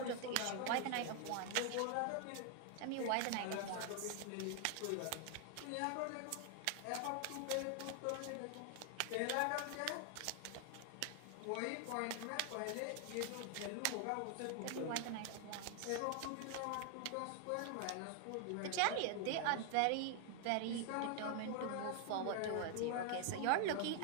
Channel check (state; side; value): different; both; correlation 0.00